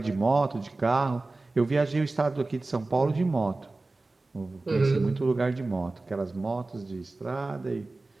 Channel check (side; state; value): left; quieter; 3.2 dB